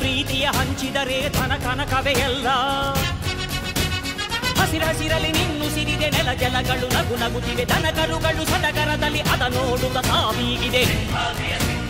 ಪ್ರೀತಿಯ ಹಂಚಿದರೆ ಧನ ಕನಕವೇ ಎಲ್ಲ. ಹಸಿರಸಿರಲಿ ನಿನ್ನು ಸಿರಿದೆ ನೆಲ ಜಲಗಳು ನಗು ನಗುತ್ತಿವೆ, ದನಕರುಗಳು ಸಡಗರದಲ್ಲಿ ಅದ ನೋಡುತ್ತ ತಾವೀಗಿದೆ.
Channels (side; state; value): both; identical; correlation 1.00